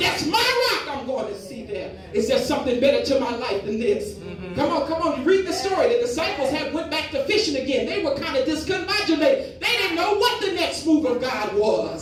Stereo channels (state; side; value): identical; both; correlation 1.00